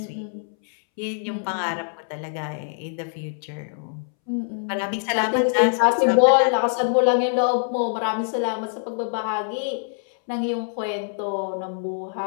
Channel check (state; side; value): silent; right; 63 dB below the other